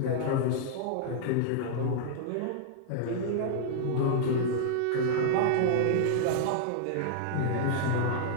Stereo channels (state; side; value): different; both; correlation -0.01